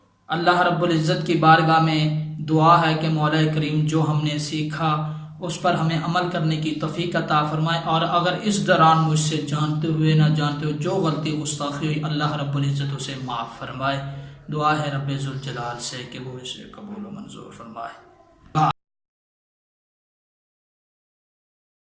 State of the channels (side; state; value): both; identical; correlation 1.00